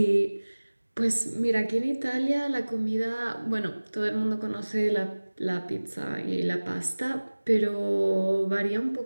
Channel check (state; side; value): inverted; both; correlation -1.00